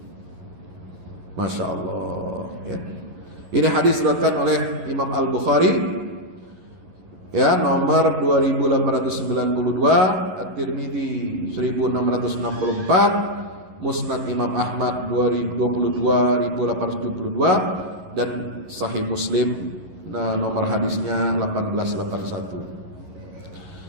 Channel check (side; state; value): left; late; 11 ms